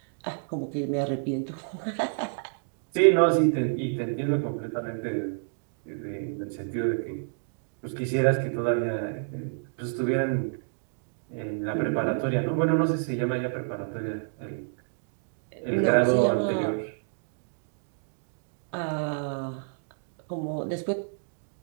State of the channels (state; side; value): silent; left; digital silence